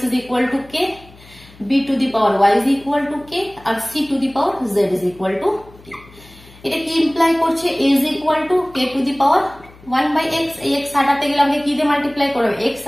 is equal to k, b to the power y is equal to k, আর c to the power z is equal to k. এটা কি ইমপ্লাই করছে, a is equal to k to the power 1/x। এই x হাটাতে গেলে আমাকে কি দিয়ে multiply করবে, x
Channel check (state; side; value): noise; left; hum, 23 dB below the sound